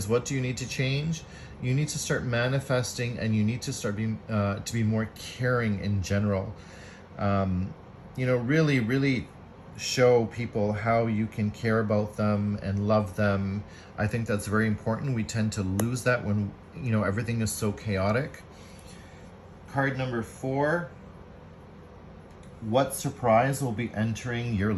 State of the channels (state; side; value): identical; both; correlation 1.00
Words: what do you need to change? You need to start manifesting, and you need to start being to be more caring in general. Really show people how you can care about them and love them. I think that's very important. We tend to lose that when everything is so chaotic. Card number 4. What surprise will be entering your